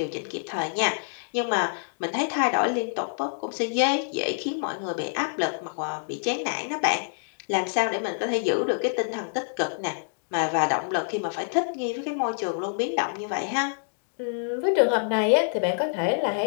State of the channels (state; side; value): silent; right; digital silence